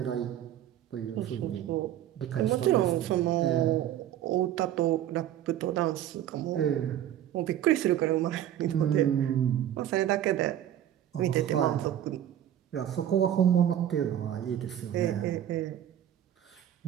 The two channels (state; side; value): quieter; left; 11.3 dB